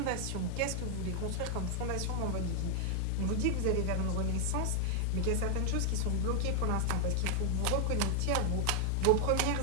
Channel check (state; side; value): different; both; correlation 0.00